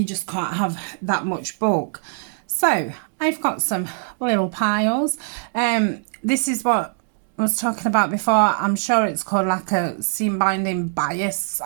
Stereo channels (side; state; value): left; silent; 64 dB below the other